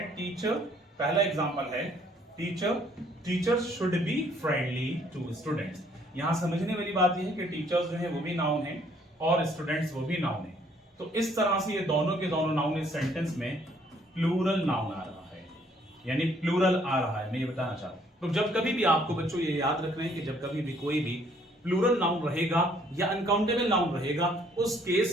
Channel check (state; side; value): normal; both; correlation 0.63